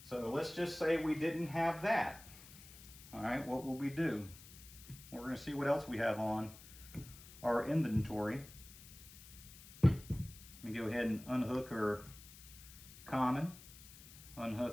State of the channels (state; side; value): noise; left; hiss, 18 dB below the sound